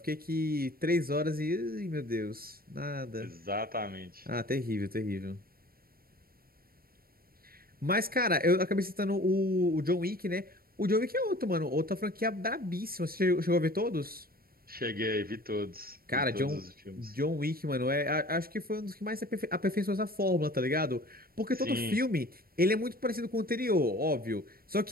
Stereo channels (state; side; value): late; left; 0.43 ms